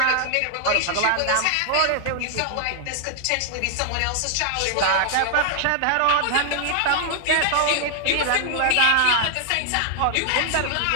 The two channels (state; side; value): different; both; correlation 0.00